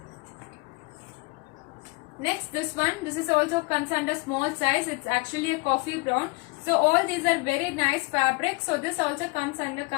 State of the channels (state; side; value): quieter; right; 27.1 dB